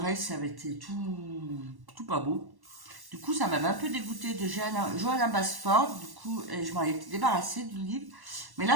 ça avait été tout pas beau. Du coup, ça m'avait un peu dégoûté de Johanna Basford. Du coup, je m'en étais débarrassée du livre. Mais là,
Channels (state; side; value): late; left; 1.1 ms